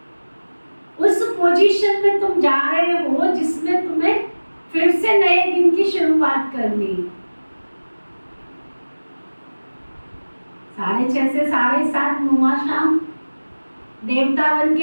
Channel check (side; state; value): both; inverted; correlation -1.00